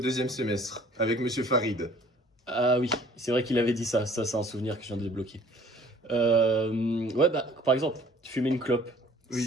semestre, avec Monsieur Farid. Ah oui, c'est vrai qu'il avait dit ça. Ça, c'est un souvenir que je viens de débloquer. Ouais, bah, par exemple, fumer une clope. Oui.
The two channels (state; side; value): normal; both; correlation 0.54